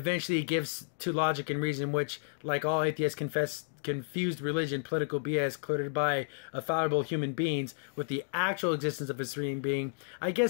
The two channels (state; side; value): silent; right; digital silence